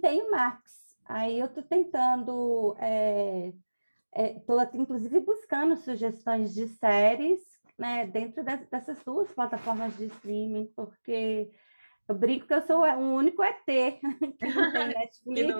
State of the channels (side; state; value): both; inverted; correlation -1.00